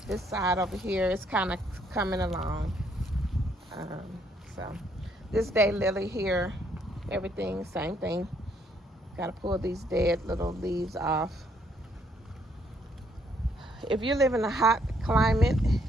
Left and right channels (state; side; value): normal; both; correlation 0.69